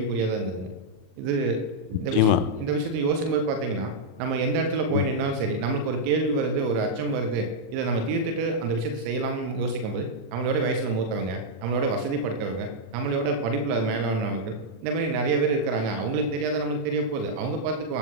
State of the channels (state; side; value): late; left; 40 ms